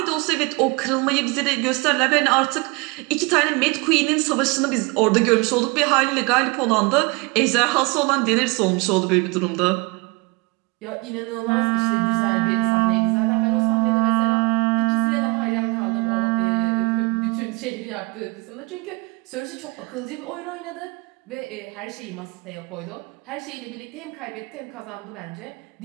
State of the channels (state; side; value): quieter; left; 28.3 dB